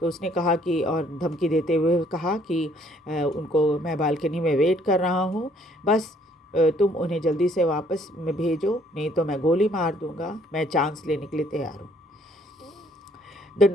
तो उसने कहा कि, और धमकी देते हुए कहा कि उनको मैं बालकनी में वेट कर रहा हूँ, बस तुम उन्हें जल्दी से वापस में भेजो, नहीं तो मैं गोली मार दूंगा, मैं चांस लेने के लिए तैयार हूँ। The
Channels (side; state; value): both; normal; correlation 0.63